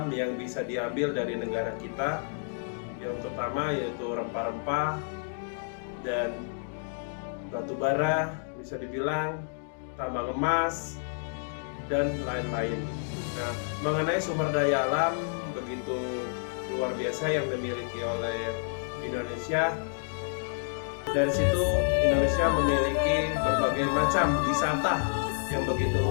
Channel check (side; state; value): right; silent; digital silence